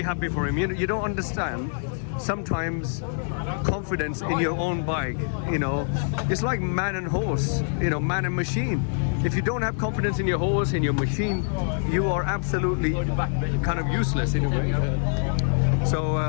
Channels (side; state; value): right; silent; 62 dB below the other